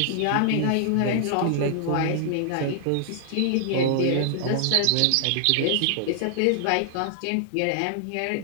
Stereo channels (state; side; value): different; both; correlation -0.01